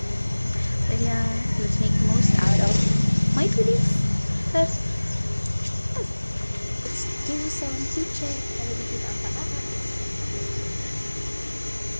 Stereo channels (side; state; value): both; inverted; correlation -1.00